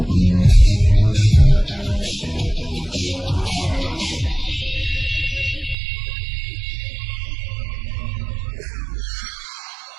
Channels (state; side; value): drops out; left; at 5.8 s